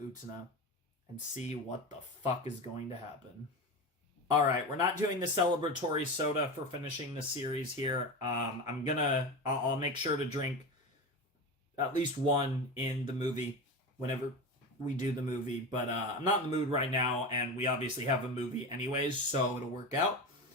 and see what the fuck is going to happen. Alright, we're not doing the celebratory soda for finishing the series here. I'll make sure to drink at least one in the movie whenever we do the movie. But I'm not in the mood right now, and we obviously have a movie anyways, so it'll work out.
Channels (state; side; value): normal; both; correlation 0.24